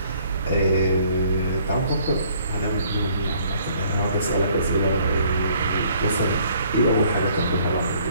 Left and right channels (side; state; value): both; inverted; correlation -0.61